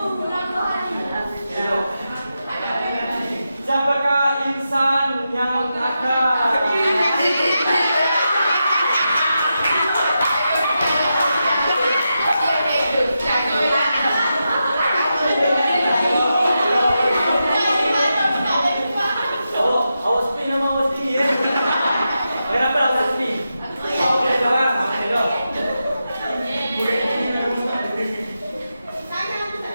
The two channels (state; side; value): inverted; both; correlation -0.88